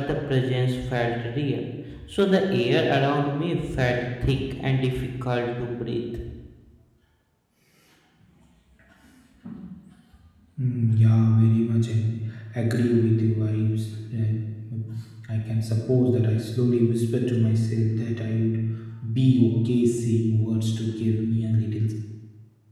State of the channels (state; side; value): identical; both; correlation 1.00